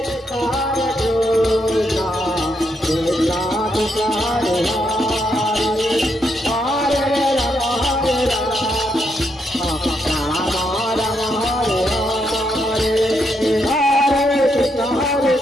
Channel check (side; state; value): both; normal; correlation 0.79